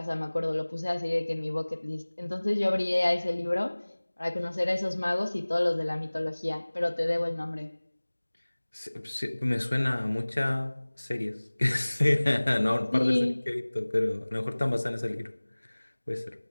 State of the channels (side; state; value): both; inverted; correlation -1.00